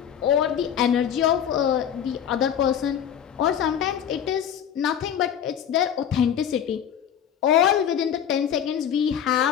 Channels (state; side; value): quieter; right; 9.0 dB